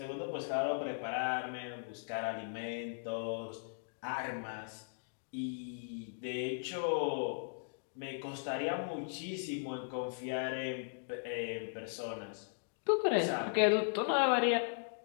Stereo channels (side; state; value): right; silent; digital silence